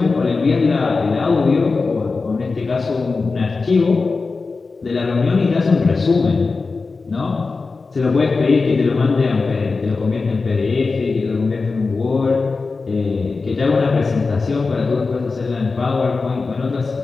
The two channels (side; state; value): right; quieter; 4.1 dB